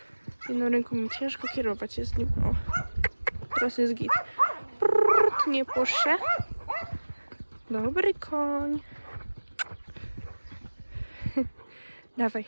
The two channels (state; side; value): inverted; both; correlation -1.00